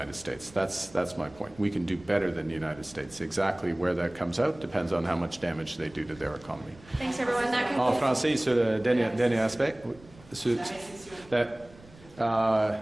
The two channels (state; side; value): noise; right; rumble, 23 dB below the sound